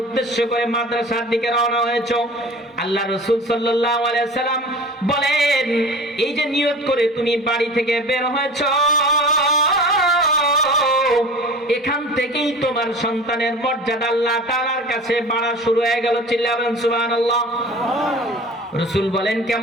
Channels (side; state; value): both; normal; correlation 0.39